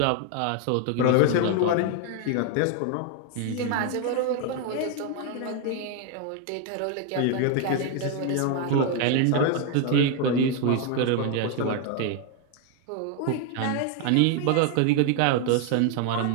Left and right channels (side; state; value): both; different; correlation 0.00